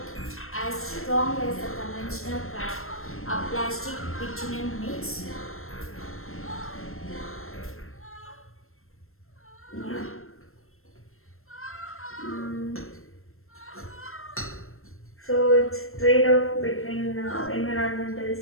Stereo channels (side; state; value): right; late; 0.62 ms